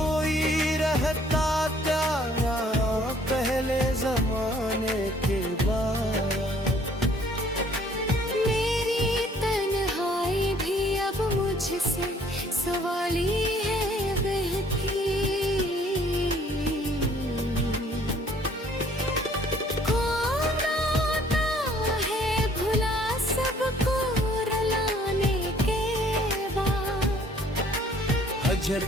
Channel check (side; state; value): both; normal; correlation 0.59